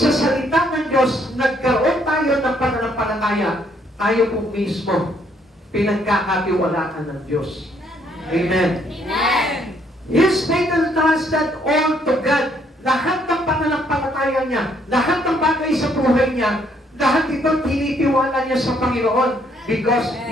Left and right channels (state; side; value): normal; both; correlation 0.69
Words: salita ng Diyos, nagkaroon tayo ng pananampalataya, tayo po mismo pinagkakatiwalaan ng Diyos. Amen. Amen. His faith entrusted all to God. Lahat ng pananampalataya niya, lahat ng bagay sa buhay niya, lahat ito tinitiwala niya sa Panginoon because